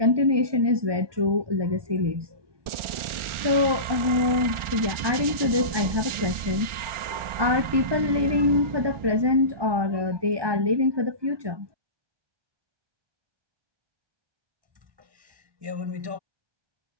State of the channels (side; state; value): left; late; 1.4 ms